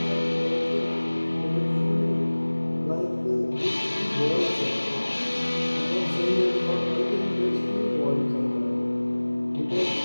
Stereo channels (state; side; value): inverted; both; correlation -1.00